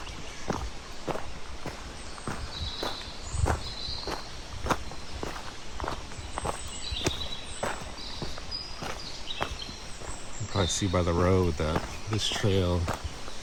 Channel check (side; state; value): both; identical; correlation 1.00